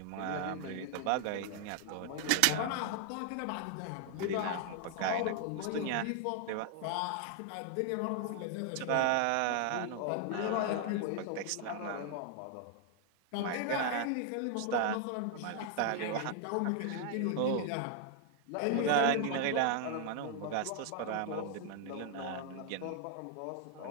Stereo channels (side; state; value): both; different; correlation 0.00